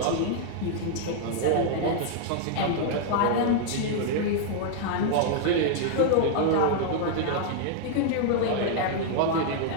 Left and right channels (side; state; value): both; different; correlation 0.00